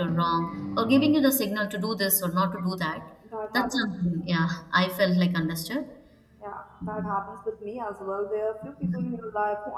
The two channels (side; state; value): both; identical; correlation 1.00